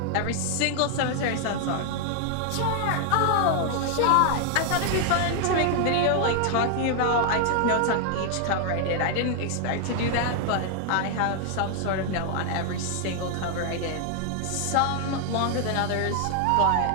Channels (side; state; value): both; different; correlation 0.00